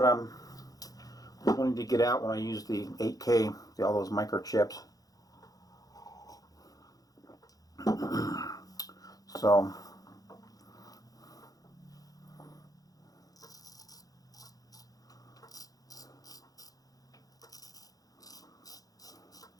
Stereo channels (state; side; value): late; right; 0.18 ms